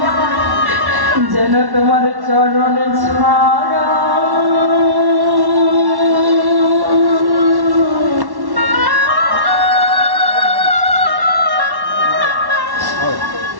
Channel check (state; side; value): late; left; 1.1 ms